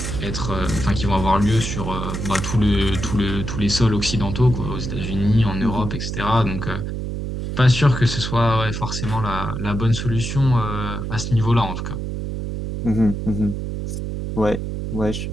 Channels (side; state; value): right; noise; hum, 4 dB below the sound